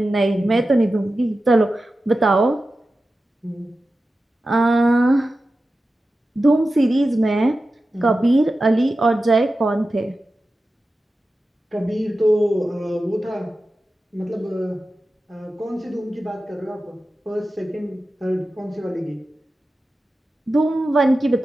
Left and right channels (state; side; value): normal; both; correlation 0.93